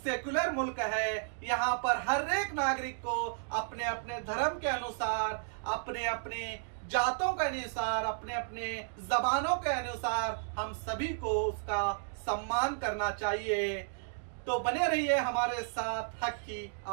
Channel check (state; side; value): silent; left; digital silence